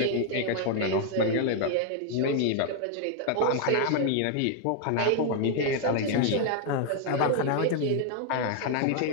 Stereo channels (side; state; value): both; different; correlation 0.00